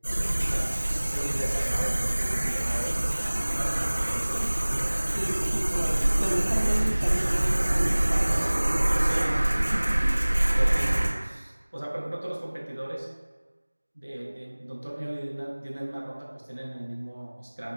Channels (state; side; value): inverted; both; correlation -1.00